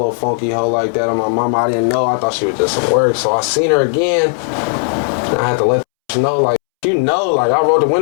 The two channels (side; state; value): right; silent; 70 dB below the other